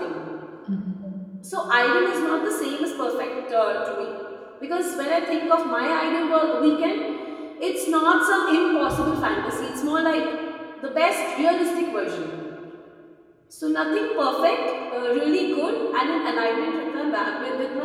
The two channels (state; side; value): identical; both; correlation 1.00